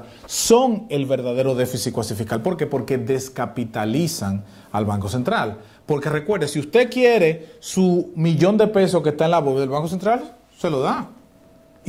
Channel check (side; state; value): both; identical; correlation 1.00